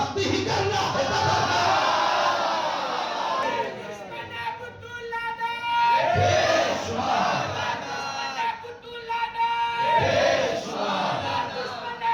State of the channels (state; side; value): identical; both; correlation 1.00